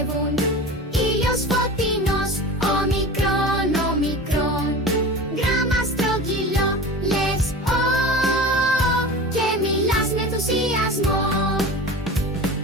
Ήλιος φωτεινός. Όμικρον, όμικρον. Γράμμα στρογγυλό. Λες και μιλάς με ενθουσιασμό.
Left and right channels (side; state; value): both; normal; correlation 0.33